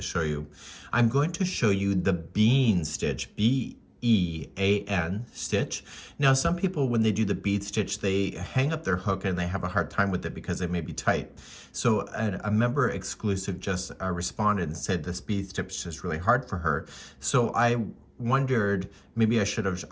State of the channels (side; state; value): both; identical; correlation 1.00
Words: show you. I'm going to show you the bean stitch, B-E-A-N stitch. Now some people, when they do the bead stitch, they hang up their hook and they have a hard time with it because it may be tight. So a member exclusive just responded and said this bead stitch is really hard for her. So I wondered maybe I should have